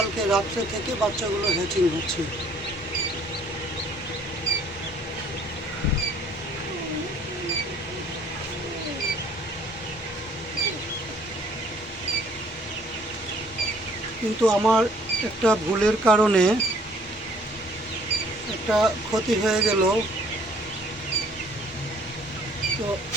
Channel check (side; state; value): both; normal; correlation 0.59